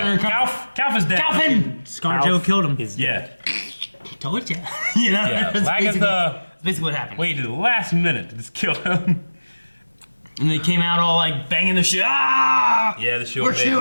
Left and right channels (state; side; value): inverted; both; correlation -1.00